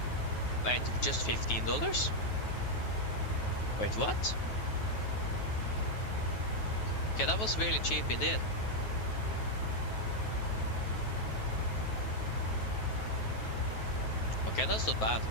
Wait, just $15? Wait, what? Okay, that was really cheap indeed. Okay, that's not bad.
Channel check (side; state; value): right; late; 9.3 ms